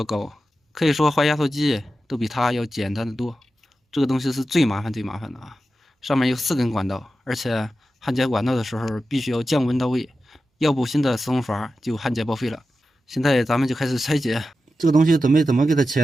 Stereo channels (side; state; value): both; normal; correlation 0.92